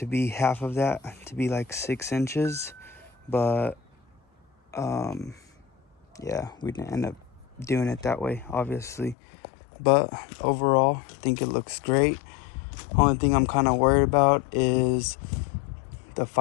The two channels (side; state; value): right; drops out; at 9.2 s